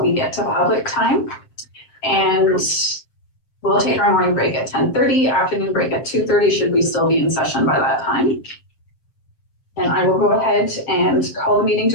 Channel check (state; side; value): late; right; 7.7 ms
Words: get to public time. And we'll take our morning break at 10:30, afternoon break at 2:30, should we still be in session by that time. And I will go ahead and call the meeting